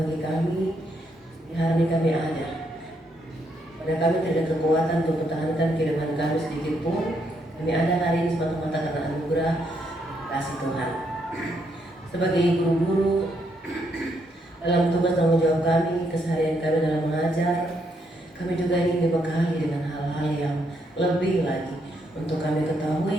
kami. Di hari ini kami ada. Pada kami tidak ada kekuatan untuk mempertahankan kehidupan kami sedikit pun. Kami ada hari ini semata-mata karena anugerah kasih Tuhan. Sebagai ibu guru, dalam tugas tanggung jawab kami, keseharian kami dalam mengajar, kami juga ingin dibekali dengan hal-hal yang lebih lagi untuk kami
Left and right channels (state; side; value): normal; both; correlation 0.76